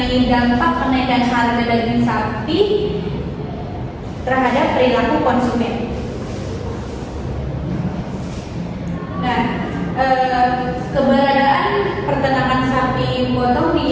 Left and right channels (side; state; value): both; identical; correlation 1.00